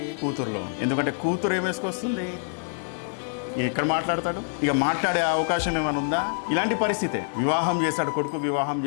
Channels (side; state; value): right; silent; digital silence